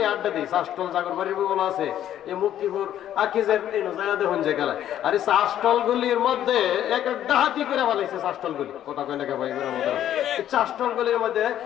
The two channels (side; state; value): right; quieter; 11.3 dB